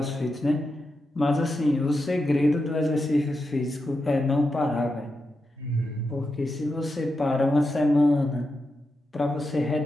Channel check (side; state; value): both; normal; correlation 0.87